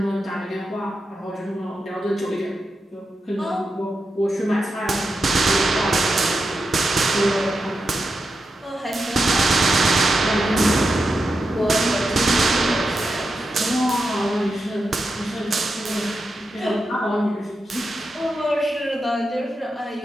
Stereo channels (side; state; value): both; normal; correlation 0.88